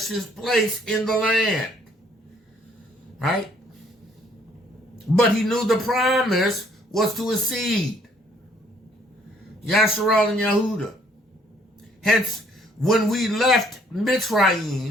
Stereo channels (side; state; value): both; normal; correlation 0.63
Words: his place in the land, right? But he knew the promise was to his seed, Yashar'Al and Yahudah. Hence, when we left